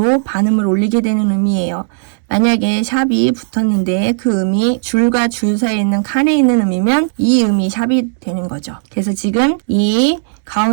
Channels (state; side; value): silent; left; digital silence